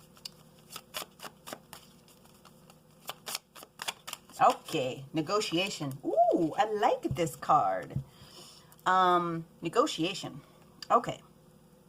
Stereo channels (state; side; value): identical; both; correlation 1.00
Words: Okay, negotiation. Ooh, I like this card. Negotiation. Okay,